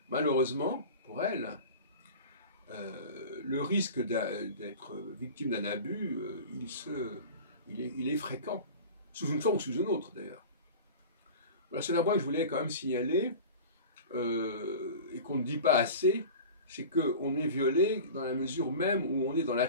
malheureusement, pour elle, le risque d'être victime d'un abus, il est fréquent, sous une forme ou sous une autre d'ailleurs. Voilà, c'est un point que je voulais quand même signaler, et qu'on ne dit pas assez, c'est qu'on est violé dans la mesure même où on est dans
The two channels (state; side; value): inverted; both; correlation -0.35